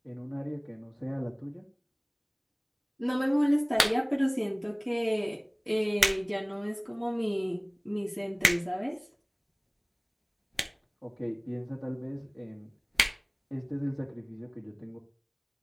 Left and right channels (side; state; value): both; identical; correlation 1.00